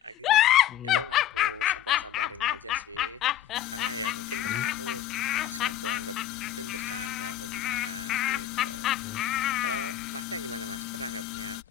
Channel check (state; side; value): quieter; right; 11.6 dB